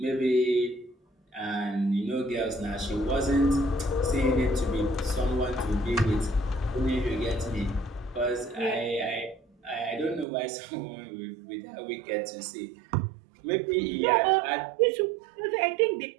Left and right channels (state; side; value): drops out; left; at 10.2 s